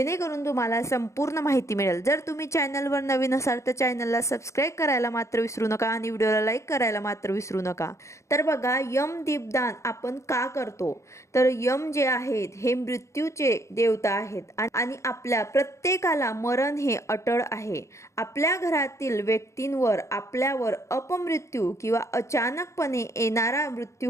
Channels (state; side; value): late; right; 0.14 ms